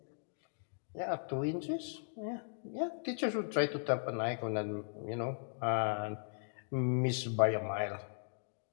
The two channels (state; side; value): silent; right; digital silence